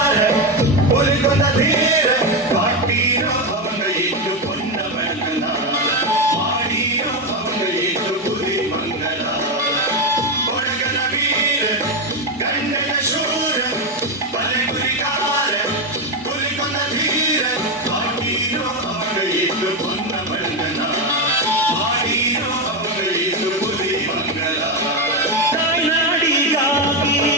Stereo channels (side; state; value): both; normal; correlation 0.10